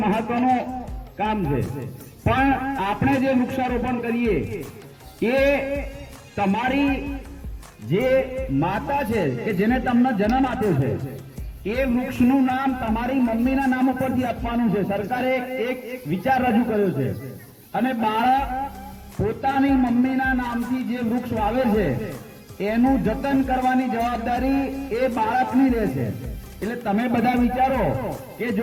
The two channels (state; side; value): identical; both; correlation 1.00